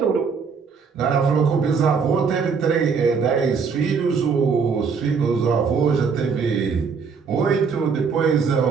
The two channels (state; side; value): quieter; left; 5.7 dB